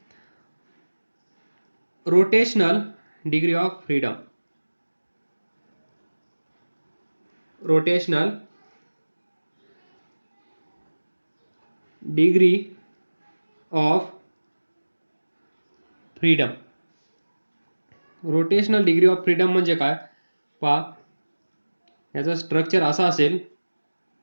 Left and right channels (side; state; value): both; inverted; correlation -1.00